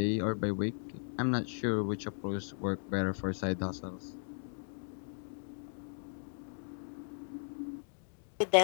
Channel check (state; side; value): silent; right; digital silence